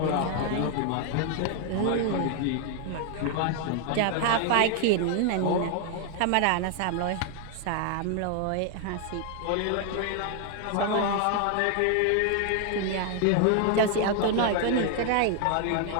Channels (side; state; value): both; different; correlation 0.00